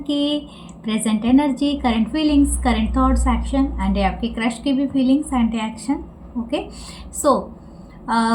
present energy, current feelings, current thoughts, action and आपके क्रश की भी feelings and action. Okay,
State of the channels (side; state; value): both; identical; correlation 1.00